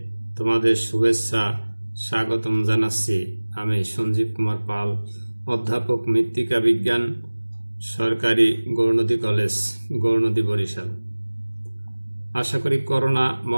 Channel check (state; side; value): inverted; both; correlation -1.00